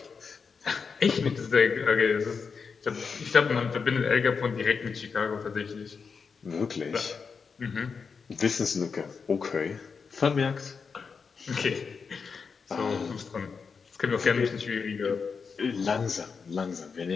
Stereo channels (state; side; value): quieter; right; 5.5 dB